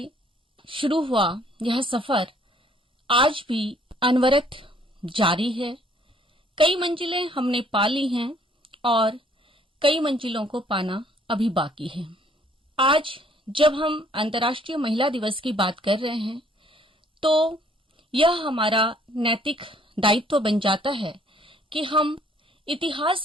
शुरू हुआ यह सफर आज भी अनवरत जारी है। कई मंजिलें हमने पा ली हैं और कई मंजिलों को पाना अभी बाकी है। आज जब हम अंतर्राष्ट्रीय महिला दिवस की बात कर रहे हैं तो यह हमारा नैतिक दायित्व बन जाता है कि हम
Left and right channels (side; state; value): both; normal; correlation 0.62